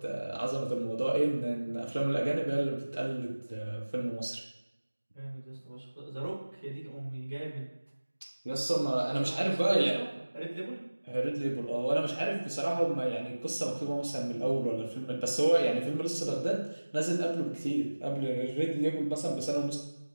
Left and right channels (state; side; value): inverted; both; correlation -1.00